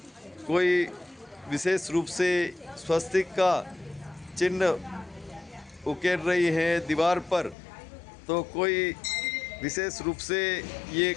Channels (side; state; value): right; drops out; at 7.6 s